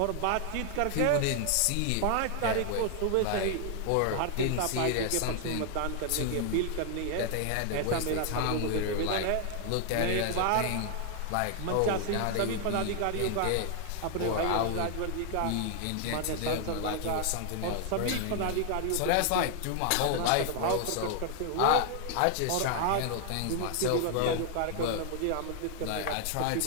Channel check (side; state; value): both; different; correlation 0.00